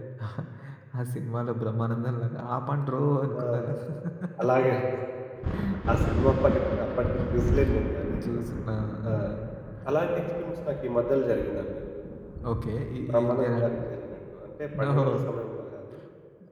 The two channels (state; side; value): identical; both; correlation 1.00